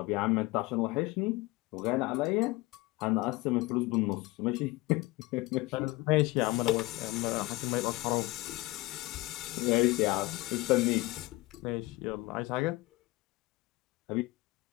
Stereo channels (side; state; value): right; quieter; 20.8 dB